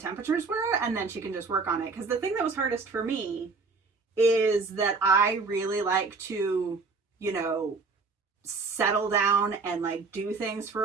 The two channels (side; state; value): left; quieter; 4.3 dB